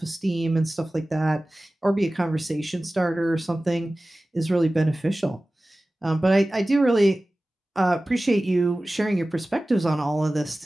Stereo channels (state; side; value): normal; both; correlation 0.97